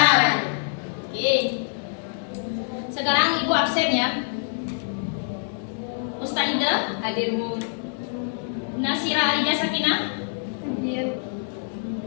Oke. Sekarang Ibu absen ya. Ustazah Hadir, Bu. Nasira Alija Sakinah, Hadir.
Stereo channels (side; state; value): right; silent; digital silence